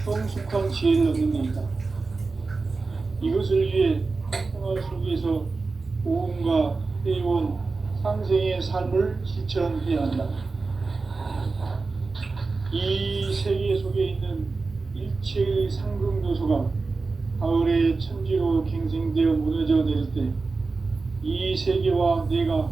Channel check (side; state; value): left; quieter; 4.0 dB